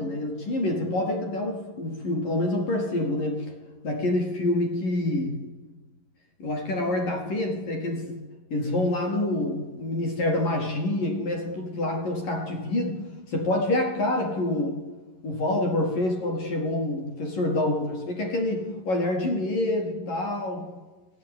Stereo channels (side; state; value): right; late; 11 ms